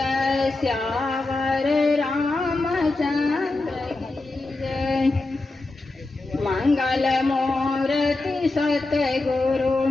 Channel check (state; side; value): quieter; right; 3.1 dB